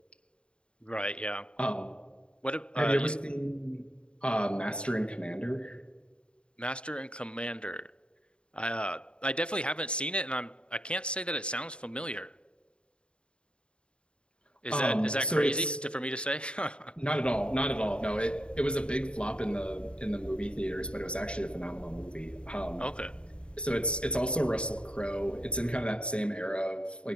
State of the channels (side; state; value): right; late; 0.055 ms